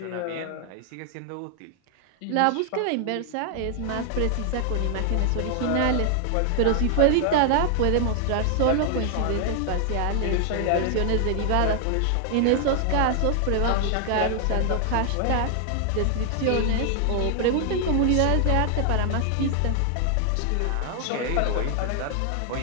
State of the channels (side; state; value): both; different; correlation 0.00